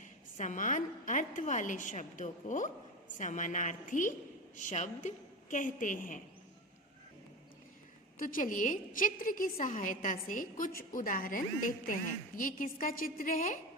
समान अर्थ वाले शब्दों को समानार्थी शब्द कहते हैं। तो चलिए चित्र की सहायता से कुछ उदाहरण देखते हैं। ये किसका चित्र है?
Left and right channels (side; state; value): both; normal; correlation 0.24